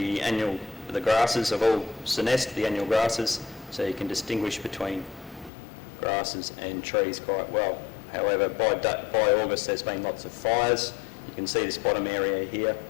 grasses have all senesced, the annual grasses, so you can distinguish between grasses and trees quite well. However, by August there's been lots of fires. You can see this bottom area here.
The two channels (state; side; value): drops out; right; at 5.5 s